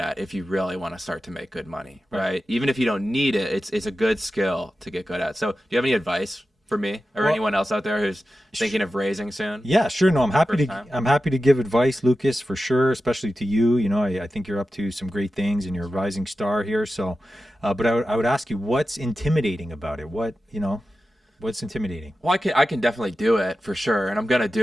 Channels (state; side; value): normal; both; correlation 0.93